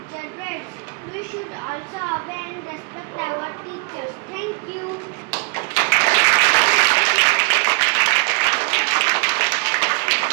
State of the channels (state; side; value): quieter; left; 32.7 dB